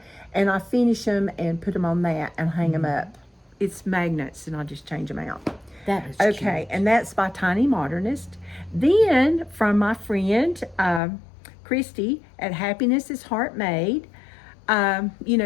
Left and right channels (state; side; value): drops out; right; at 11.0 s